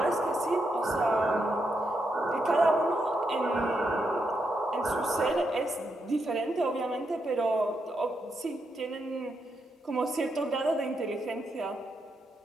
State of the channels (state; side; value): normal; both; correlation 0.82